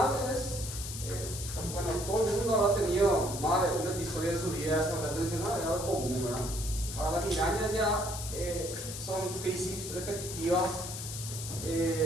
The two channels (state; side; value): noise; left; hiss, 8 dB below the sound